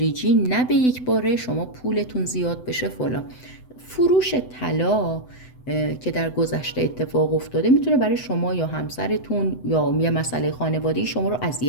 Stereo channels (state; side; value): late; right; 7.9 ms